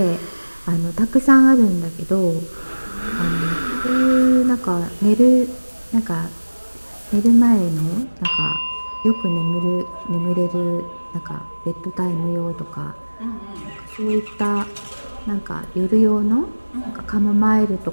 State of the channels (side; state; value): both; inverted; correlation -1.00